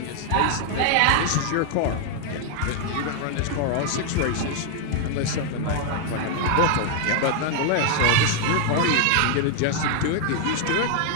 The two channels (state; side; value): different; both; correlation 0.00